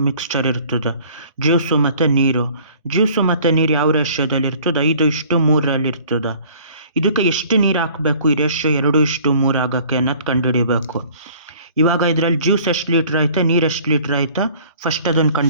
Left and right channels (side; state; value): both; inverted; correlation -0.52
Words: ಮಿಕ್ಸ್ಚರ್ ಇರ್ತದೆ, ಜ್ಯೂಸು ಮತ್ತು ನೀರು. ಜ್ಯೂಸು ಮತ್ತು ನೀರು ಯಾವ ರೇಷ್ಯೋದಲ್ಲಿ ಇರ್ತದೆ? 5:3 ಇರ್ತದೆ. ಇದಕ್ಕೆ ಎಷ್ಟು ನೀರು ಹಾಕಬೇಕು ಈ ರೇಷ್ಯೋ 2:3 ಆಗೋಕ್ಕೆ ಅನ್ನೋದು ಕಂಡುಹಿಡಿಬೇಕು. ಇವಾಗ ಇದರಲ್ಲಿ ಜ್ಯೂಸ್ ಎಷ್ಟು ಲೀಟ್ರ್ ಐತೆ, ನೀರು ಎಷ್ಟು ಲೀಟ್ರ್ ಐತೆ, ಫಸ್ಟ್ ಅದನ್ನು